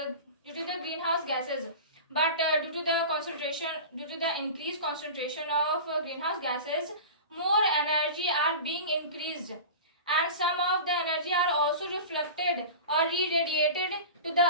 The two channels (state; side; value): inverted; both; correlation -0.32